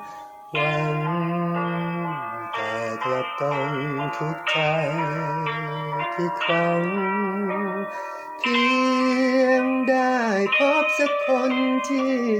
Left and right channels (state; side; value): identical; both; correlation 1.00